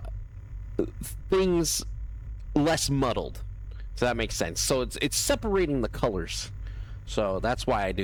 things less muddled. So that makes sense. So it's separating the colors. So that's why I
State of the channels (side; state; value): both; identical; correlation 1.00